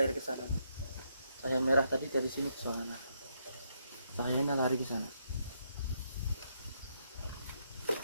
ke sana. Cahaya merah tadi dari sini ke sana. Cahayanya lari ke sana.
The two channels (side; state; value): both; inverted; correlation -0.77